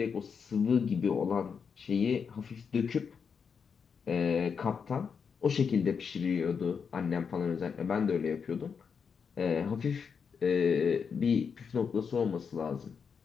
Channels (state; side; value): quieter; right; 6.2 dB